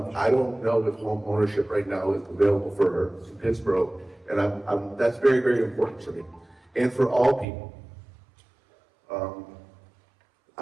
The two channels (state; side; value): drops out; left; at 7.5 s